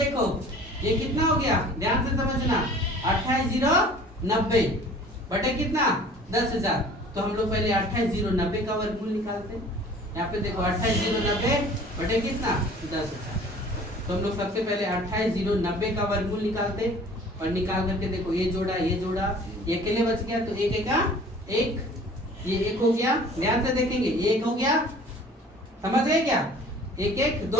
ये कितना हो गया, ध्यान से समझना 28,090 बटे कितना 10,000, तो हम लोग पहले 28,090 का वर्गमूल निकालते हैं। यहाँ पे देखो 28,090 बटे कितना 10,000, तो हम लोग सबसे पहले 28,090 का वर्गमूल निकालते हैं, और निकाल करके देखो ये जोड़ा ये अकेले बच गया, तो एक का एक, ये 1 हो गया, ध्यान से देखेंगे ये 1 हो गया, समझ गए क्या, 1 1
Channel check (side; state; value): both; normal; correlation 0.48